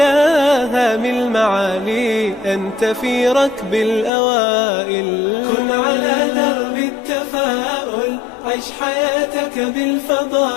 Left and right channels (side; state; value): right; drops out; at 4.1 s